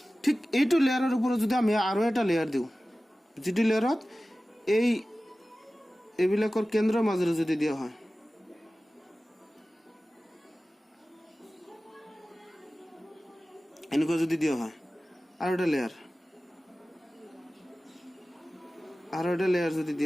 ঠিক এইটো লেয়াৰৰ ওপৰত যদি আমি আৰু এটা লেয়াৰ দিওঁ, যিটো লেয়াৰত এইবিলাকৰ কেন্দ্ৰৰ মাজেৰে যদি দিয়া হয়, এনেকুৱা যদি দিয়া হয় আৰু এটা লেয়াৰ যদি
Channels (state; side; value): normal; both; correlation 0.96